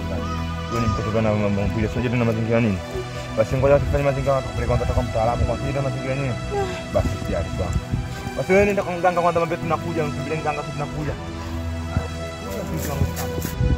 Wewe ni mtoto bana mambo mpira. Sio tena mazingira nini? Basi ngoja tufanye mazingira kwanza toka mtaalamu kwa kile mazingira nini? Basi tayari sawa. Basi wewe nenda kwa mganga kwanza mambo tunakuja msubiri mganga tunakuja.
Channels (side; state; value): both; identical; correlation 1.00